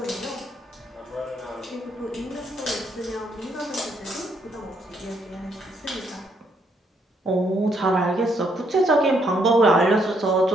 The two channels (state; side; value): normal; both; correlation 0.72